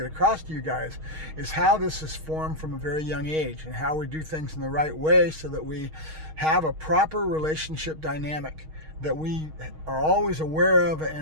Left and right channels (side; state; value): left; late; 6.4 ms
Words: across to you guys is how this is formed from a very young age and how we do things in the right way so that we have a proper relationship dynamic that we are always aware of